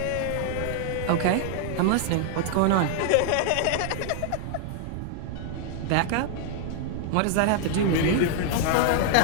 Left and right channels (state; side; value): different; both; correlation 0.00